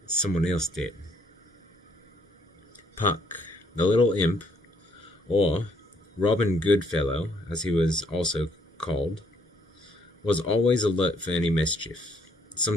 someone else did. Puck, the little imp, or Robin Goodfellow, as he was also called, was always alert for any mischief.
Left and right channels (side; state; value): both; normal; correlation 0.66